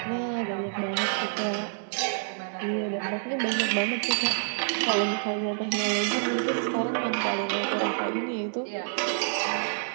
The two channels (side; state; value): left; silent; 57 dB below the other